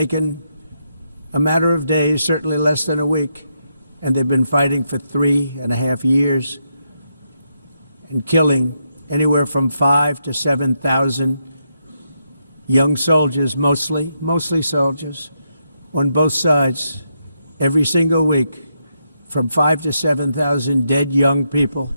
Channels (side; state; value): both; inverted; correlation -0.81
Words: a matter of days, certainly less than a week. And they've been fighting for 3.5 years and killing anywhere from 5,000 to 7,000 young soldiers, mostly soldiers, on both sides, every single week, from 5,000 to 7,000 dead young people,